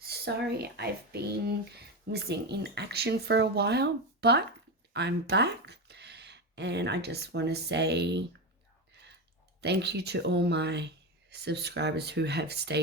I've been missing in action for a while, but I'm back and I just want to say thank you to all my subscribers who have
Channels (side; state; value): both; normal; correlation 0.16